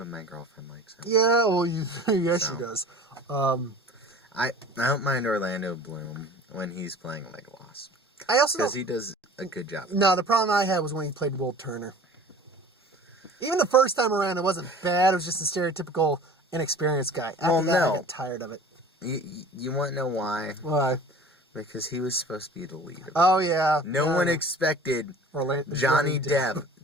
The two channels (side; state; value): both; normal; correlation 0.44